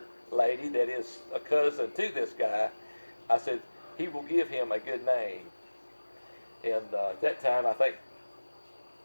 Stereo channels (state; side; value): inverted; both; correlation -1.00